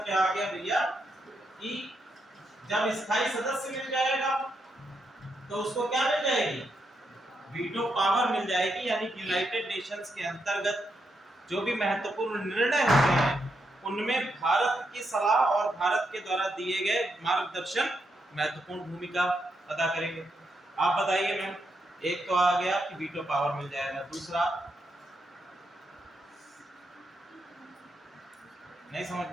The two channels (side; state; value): both; normal; correlation 0.82